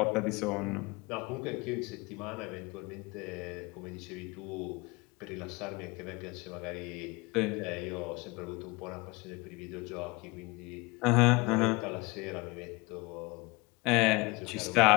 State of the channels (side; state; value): right; quieter; 24.9 dB